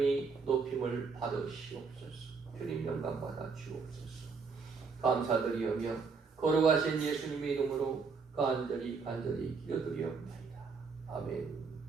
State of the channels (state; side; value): quieter; left; 5.0 dB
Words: 높임을 받으시옵소서. 주님 영광 받아 주옵소서. 감사드리오며 거룩하신 예수님의 이름으로 간절히 기도드리옵나이다. 아멘.